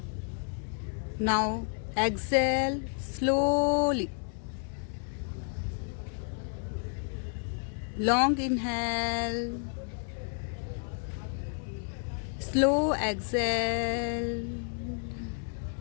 Now exhale slowly. Long inhale. Slow exhale.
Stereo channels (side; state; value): right; silent; 57 dB below the other